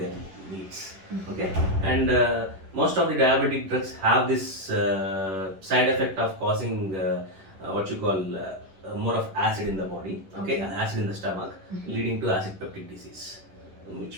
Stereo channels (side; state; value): left; late; 11 ms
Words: needs. Okay. And most of the diabetic drugs have this side effect of causing what you call more of acid in the body. Okay. Acid in the stomach, leading to acid peptic disease,